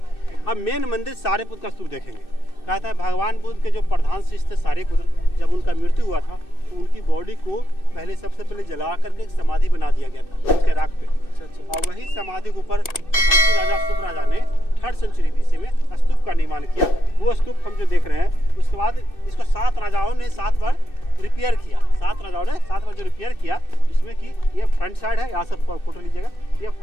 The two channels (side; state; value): right; late; 2.6 ms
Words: अब मेन मंदिर सारिपुत्र का स्तूप देखेंगे। कहता है भगवान बुद्ध के जो प्रधान शिष्य थे सारिपुत्र, जब उनका मृत्यु हुआ था तो उनकी बॉडी को सबसे पहले जला करके एक समाधि बना दिया गया था उसके राख पे। और वही समाधि के ऊपर राजा शुभ राजा ने 3rd सेंचुरी BC में स्तूप का निर्माण किया। वो स्तूप हम जो देख रहे हैं, उसके बाद इसको 7 राजाओं ने 7 बार रिपेयर किया। 7 राजाओं ने 7 बार जो रिपेयर किया, जिसमें कि ये फ्रंट साइड है, यहाँ से फोटो लीजिएगा। ये